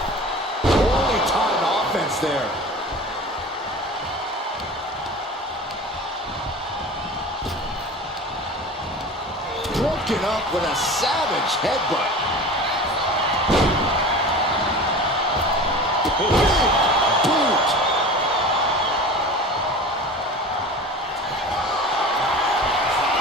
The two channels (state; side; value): normal; both; correlation 0.36